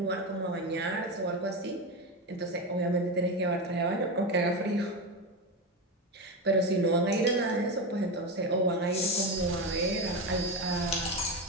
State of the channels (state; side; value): normal; both; correlation 0.17